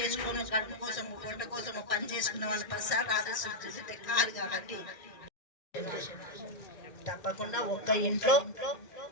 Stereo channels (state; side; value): late; right; 1.6 ms